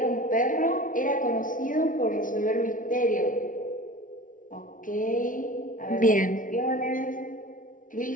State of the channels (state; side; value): late; right; 0.38 ms